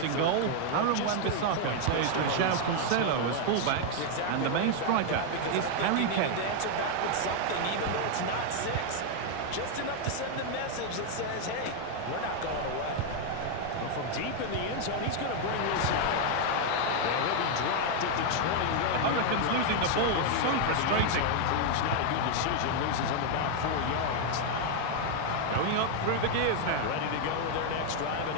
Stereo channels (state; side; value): different; both; correlation 0.00